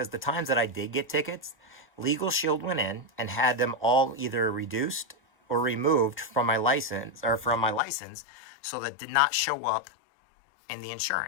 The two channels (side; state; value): right; drops out; at 7.8 s